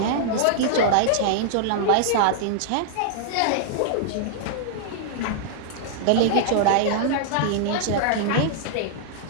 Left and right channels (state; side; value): different; both; correlation -0.01